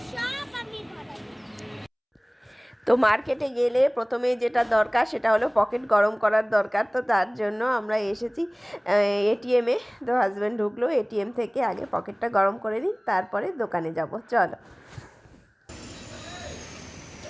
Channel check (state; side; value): identical; both; correlation 1.00